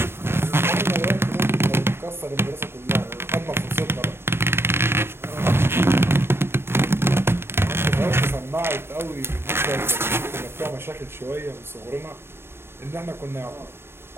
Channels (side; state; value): left; late; 0.11 ms